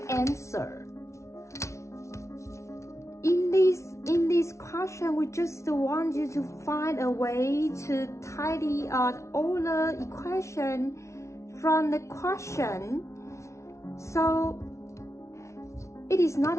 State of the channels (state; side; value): late; right; 0.14 ms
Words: answer. In this question, we just want you to find a way to tidy out all the equation from the question. So it is not